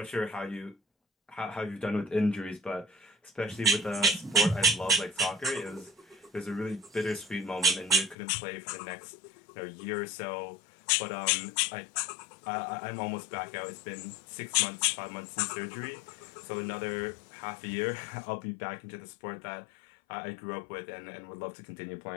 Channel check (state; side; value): drops out; right; at 8.2 s